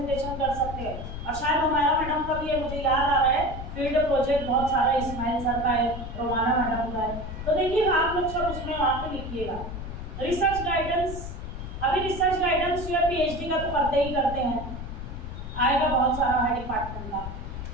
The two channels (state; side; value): noise; left; rumble, 8 dB below the sound